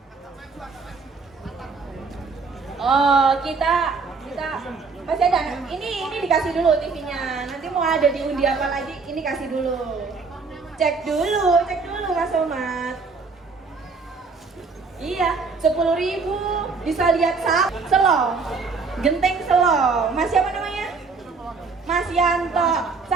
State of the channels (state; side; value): quieter; left; 4.6 dB